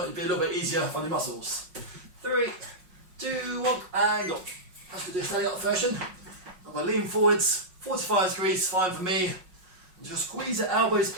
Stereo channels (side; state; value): left; late; 5.5 ms